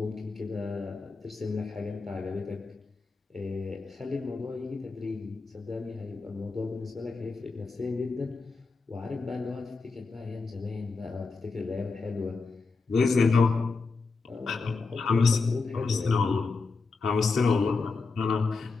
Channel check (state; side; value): quieter; right; 4.2 dB